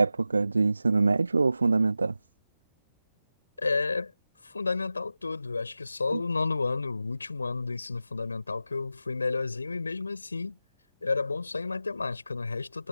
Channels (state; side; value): inverted; both; correlation -0.92